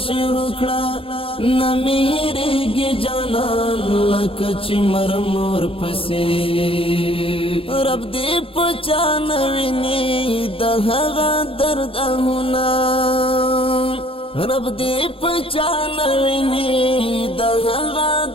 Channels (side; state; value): right; late; 0.27 ms